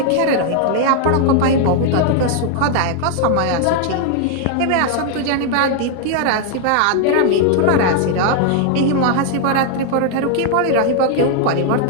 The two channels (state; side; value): different; both; correlation 0.00